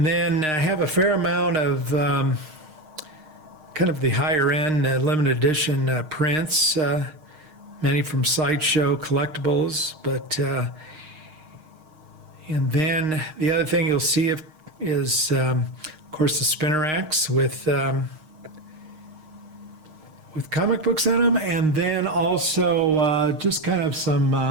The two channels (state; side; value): late; left; 6.5 ms